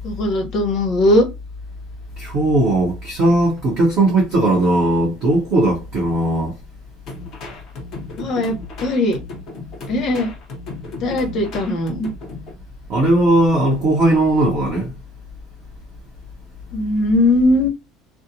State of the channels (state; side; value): normal; both; correlation 0.59